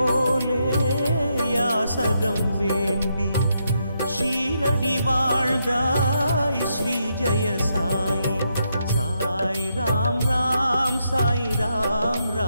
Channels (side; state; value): both; inverted; correlation -0.80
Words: யாசகம் வேண்டி ஷீரடி வாழ்ந்தாய் ஸ்ரீ ஜெய சாயி சாய் ராம் ராம் சாய் ராம்